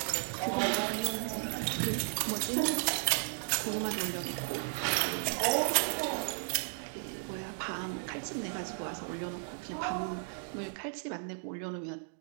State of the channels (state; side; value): silent; left; digital silence